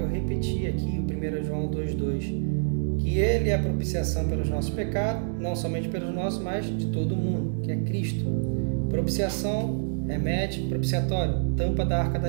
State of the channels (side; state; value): left; silent; digital silence